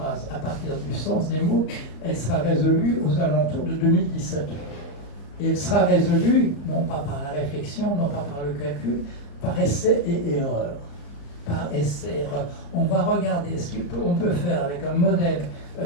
à partir du sens des mots, elle sera résolue aux alentours de 2017. Et elle sera résolue, non pas par la réflexion, non pas par le calcul, par essai et erreur. Par essai et erreur. On va regarder ce qu'on peut faire avec un modèle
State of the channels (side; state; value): right; late; 35 ms